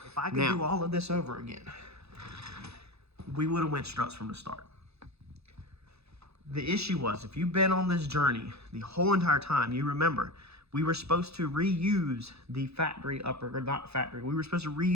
If I could do all of this over again, we would have went struts from the start. The issue was, if you've been on this journey the whole entire time, you remember, we were supposed to reuse the factory upper, or not factory, we were supposed to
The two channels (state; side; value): late; left; 0.79 ms